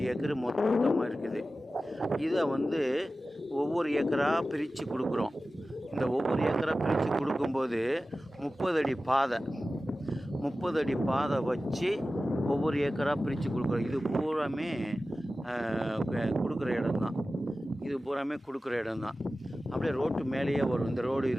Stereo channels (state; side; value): normal; both; correlation 0.95